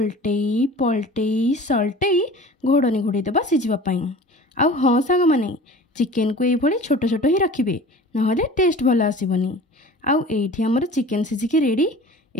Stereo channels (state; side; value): normal; both; correlation 0.41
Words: पलटेई सल्टेई घोड़नी घोड़े देवा सीझापी। आउ हाँ सांग माने चिकेन को ये छोट छोट ही रखिए ना टेस्ट भल आसबनी। आउ एठी हमर चिकेन सीझिकी रेडी